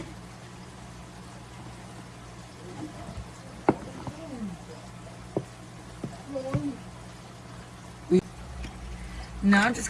Now I'm just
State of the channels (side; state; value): both; identical; correlation 1.00